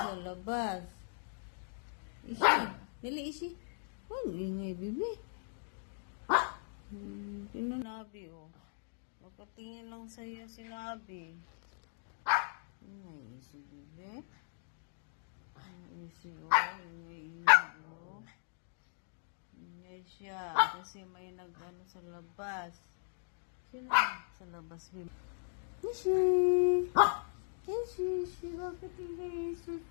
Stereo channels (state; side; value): silent; right; digital silence